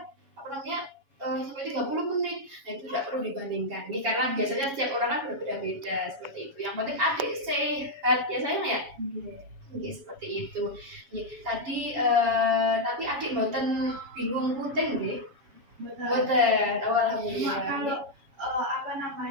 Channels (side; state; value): left; late; 7.2 ms